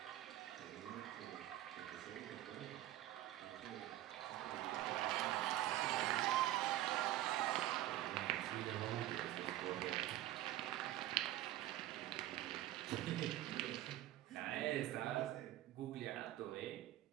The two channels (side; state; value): left; quieter; 14.5 dB